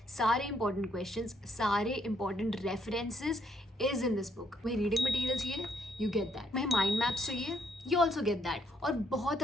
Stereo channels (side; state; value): both; normal; correlation 0.71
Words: सारे इंपॉर्टेंट क्वेश्चंस, सारे important references is in this book. तुम्हें रीडिंग मटेरियल चाहिए, यू गेट दैट। तुम्हें mind maps चाहिए, यू ऑल्सो गेट दैट। और बहुत